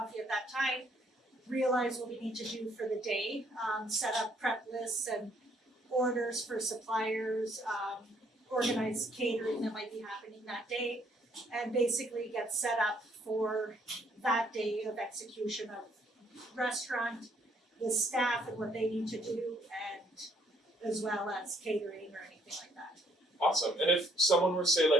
at that time, realize what we need to do for the day, set up prep lists and orders for suppliers, organize catering that might be happening that day, and basically get set up for that day of execution of restaurant, the staff and what they need to do, and as well as catering or anything like that. Awesome. And if someone were, say,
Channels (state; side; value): normal; both; correlation 0.67